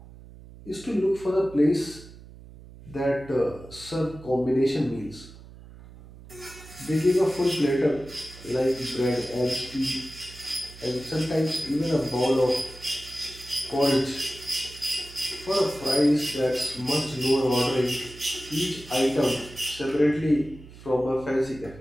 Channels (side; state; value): right; noise; hum, 18 dB below the sound